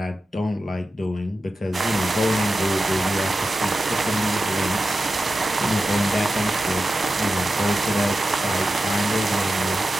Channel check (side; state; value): both; normal; correlation 0.92